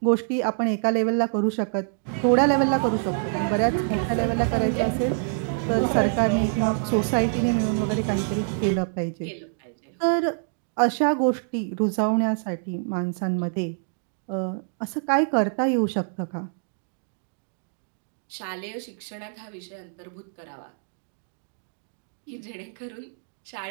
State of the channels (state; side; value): silent; left; digital silence